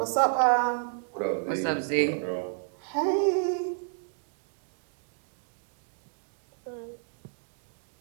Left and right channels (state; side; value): silent; left; digital silence